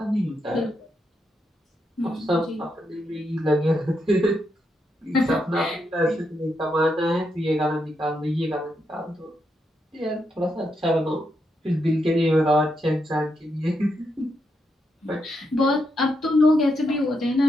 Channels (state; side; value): normal; both; correlation 0.82